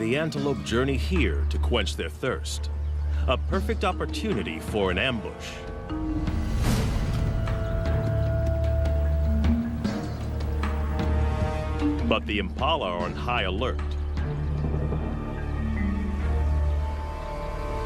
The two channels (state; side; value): identical; both; correlation 1.00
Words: antelope journey here to quench their thirst. A perfect opportunity for an ambush. But the impala are on high alert.